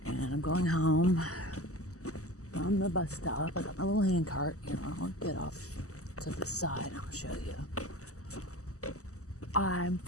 and I'm going home from the bus stop. I got my little hand cart. I'll get off to the side and I'll show you. I'm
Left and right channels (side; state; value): right; late; 0.66 ms